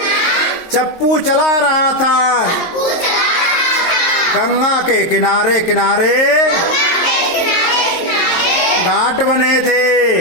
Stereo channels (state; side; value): late; right; 23 ms